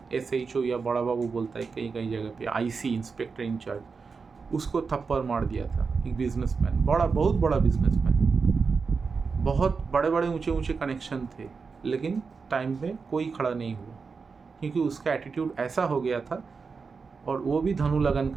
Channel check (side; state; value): left; quieter; 5.0 dB